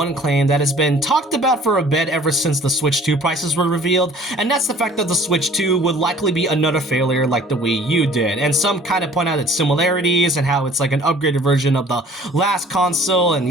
claim that has been talked about for a bit ever since the Switch 2 prices were revealed, and that's the fact that the Switch 2 would likely be another failure like the Wii U did. And some kind of point out its similarities and how it's like an upgraded version of the last console and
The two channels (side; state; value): both; normal; correlation 0.52